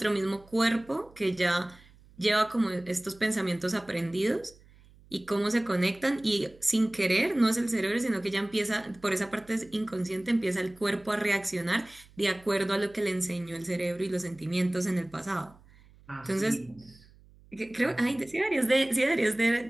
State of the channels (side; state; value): right; noise; hum, 26 dB below the sound